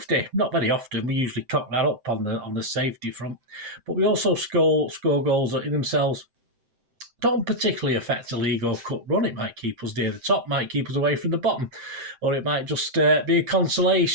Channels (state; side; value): late; left; 7.7 ms